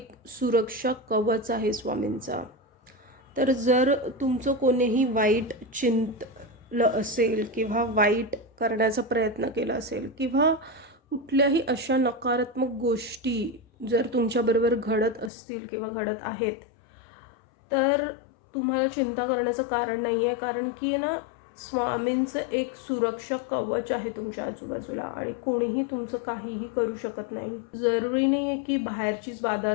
सुरक्षा कवच आहे स्वामींचा. तर जर तुमचं कोणीही वाईट चिंतलं असेल किंवा वाईट करण्याचा प्रयत्न केला असेल किंवा कुठल्याही अशा नकारात्मक गोष्टी जर तुमच्याबरोबर घडत असतील किंवा घडत आहेत, तर तुम्हाला चिंता करण्याचं कारण नाही आहे. कारण की आहे ना, स्वामींचं एक सुरक्षा कवच आहे तुमच्या आजूबाजूला आणि कोणीही तुमचं काहीही करू शकत नाही. जरुरी नाही आहे की बाहेरचीच बाधा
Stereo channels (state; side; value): drops out; right; at 15.3 s